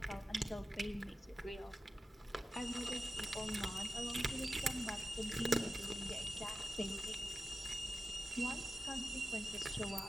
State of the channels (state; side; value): normal; both; correlation 0.94